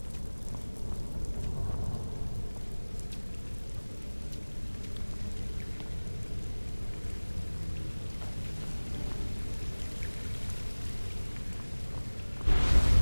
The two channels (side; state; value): both; inverted; correlation -1.00